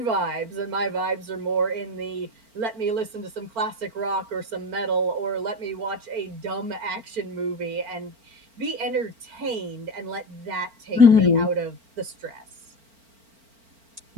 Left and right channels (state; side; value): late; left; 4.4 ms